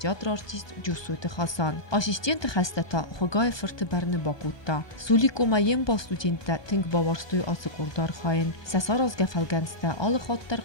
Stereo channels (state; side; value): late; right; 1.2 ms